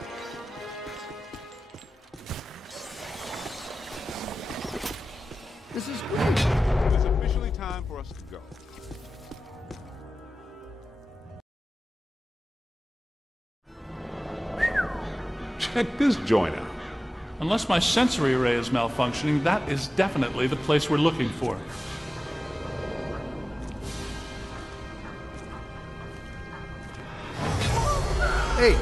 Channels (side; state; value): both; normal; correlation 0.96